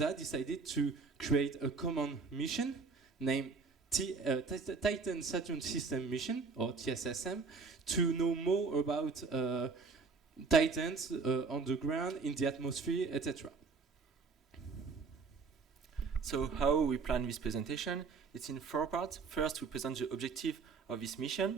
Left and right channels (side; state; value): left; quieter; 4.7 dB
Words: decided to create a common mission named Titan Saturn System Mission, or TSSM, to know more about Titans on the ground, in the atmosphere, etc. So how we plan this presentation? It's in 4 parts. First, we present the objective of this